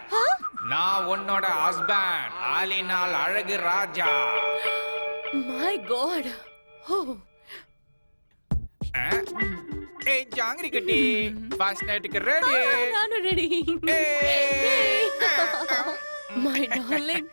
நான் உன்னோட ஹஸ்பண்ட், ஆலினால் அழகு ராஜா. My God. ஓ ஏய் ஜாங்கிரி கட்டி, ஃபர்ஸ்ட் நைட்டுக்கு ரெடி. நானும் ready. My darling,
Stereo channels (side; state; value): both; inverted; correlation -1.00